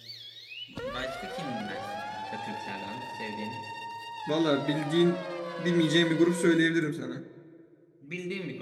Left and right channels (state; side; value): identical; both; correlation 1.00